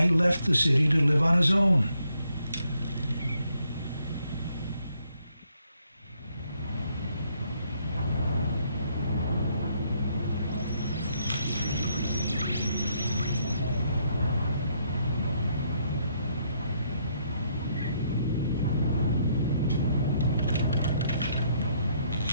left the city to live on his own.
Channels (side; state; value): both; inverted; correlation -0.72